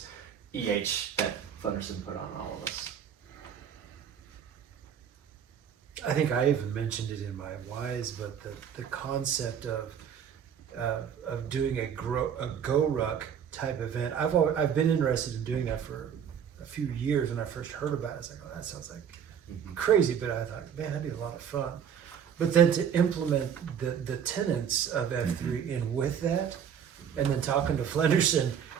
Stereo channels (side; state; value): left; quieter; 8.2 dB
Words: EH that Flenderson put on all of us. I think I even mentioned it in my whys, but the concept of doing a GROWRUCK type event, I've been interested in doing that for a few years. When I first heard about it, I was like, oh, that sounds like crazy, but I thought, man, that'd be a lot of fun. But then to implement the tenets of F3 in with that, and then talking to Flenderson,